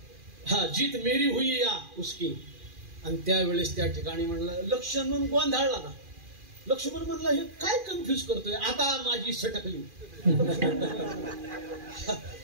हा जीत मेरी हुई या उसकी. आणि त्यावेळेस त्या ठिकाणी म्हणलं, लक्ष्मण गोंधळला ना. लक्ष्मण म्हणला, हे काय कन्फ्युज करतोय, आता माझी सटकली.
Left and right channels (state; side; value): late; left; 2.4 ms